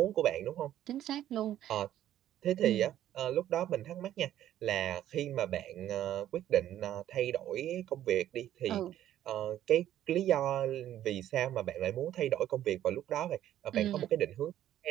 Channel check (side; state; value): left; quieter; 12.1 dB